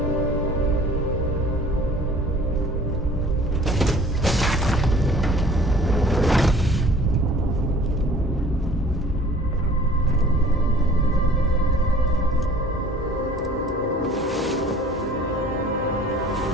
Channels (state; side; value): normal; both; correlation 0.49